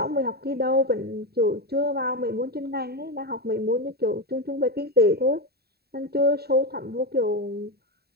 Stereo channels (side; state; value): left; late; 0.46 ms